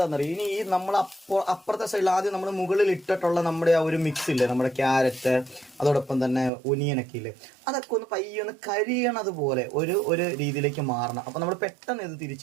ഇനി ഈ നമ്മൾ അപ്പുറത്തെ സൈഡിൽ ആദ്യം നമ്മൾ മുകളിൽ ഇട്ടിട്ടുള്ള നമ്മുടെ ആ ഒരു മിക്സ് ഇല്ലേ, നമ്മുടെ ക്യാരറ്റ് അതോടൊപ്പം തന്നെ ഒനിയനൊക്കെ ഇല്ലേ, അതൊക്കെ ഒന്ന് പയ്യെ ഒന്ന് കരിയണത് പോലെ ഒരു രീതിയിലേക്ക് മാറണം. അപ്പം നമ്മൾ പെട്ടെന്ന് ഇത്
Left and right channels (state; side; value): drops out; left; at 6.5 s